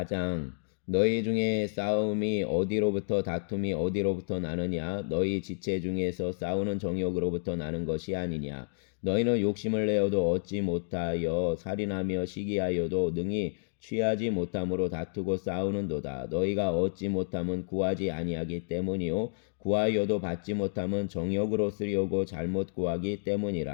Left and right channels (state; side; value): silent; right; digital silence